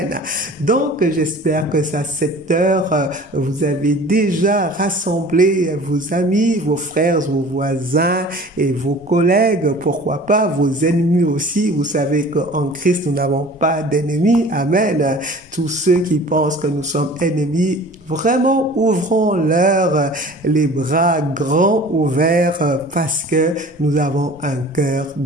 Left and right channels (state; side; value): normal; both; correlation 0.44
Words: Donc, j'espère que à cette heure, vous avez déjà rassemblé vos amis, vos frères, vos voisins et vos collègues, pourquoi pas vos ennemis aussi. Vous savez qu'en Christ, nous n'avons pas d'ennemis. Amen. Tous ceux qui pensent que nous sommes ennemis, vraiment ouvrons-leur les bras grands ouverts parce que nous avons un cœur